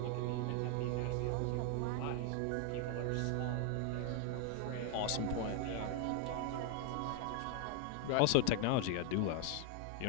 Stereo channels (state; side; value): different; both; correlation 0.00